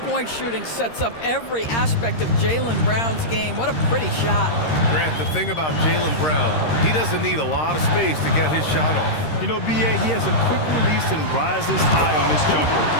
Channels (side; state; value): right; late; 13 ms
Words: shooting sets up every aspect of Jaylen Brown's game. What a pretty shot. Grant, the thing about Jaylen Brown, he doesn't need a lot of space to get his shot off. You know, B.A., he has a quick release and rises high on his jumper.